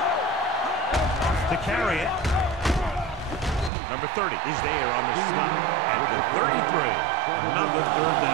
To carry it. Number 30 is there on the stop at the 33. Another third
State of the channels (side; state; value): left; drops out; at 3.7 s